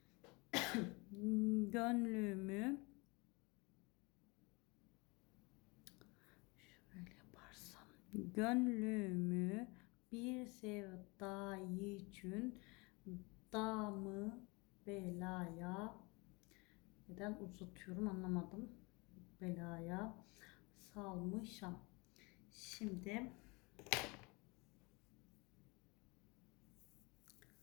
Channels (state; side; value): quieter; right; 27.3 dB